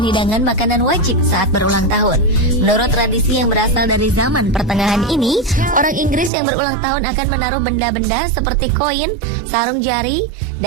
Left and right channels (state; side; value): drops out; left; at 6.3 s